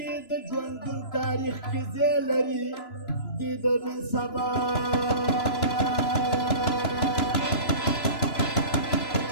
د ژوندون تاریخ کې ځای لري د نن سبا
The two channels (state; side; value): late; right; 2.9 ms